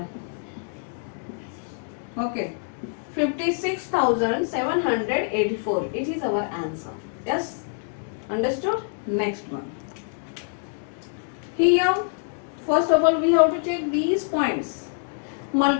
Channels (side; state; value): right; silent; 60 dB below the other